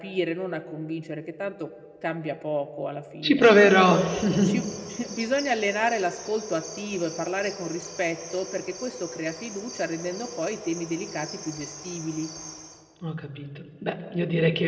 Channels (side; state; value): both; identical; correlation 1.00